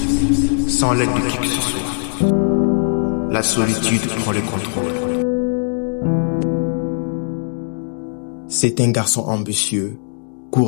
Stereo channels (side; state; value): right; silent; digital silence